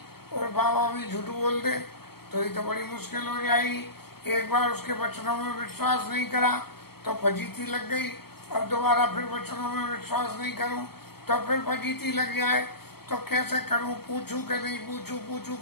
और बाबा भी झूठ बोल दे तो ये तो बड़ी मुश्किल हो जाएगी। एक बार उसके वचनों में विश्वास नहीं करा तो फजीती लग गई, अब दोबारा फिर वचनों में विश्वास नहीं करूं तो फिर फजीती लग जाए, तो कैसे करूं, पूछूं कि नहीं पूछूं, पूछूं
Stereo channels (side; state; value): right; late; 0.96 ms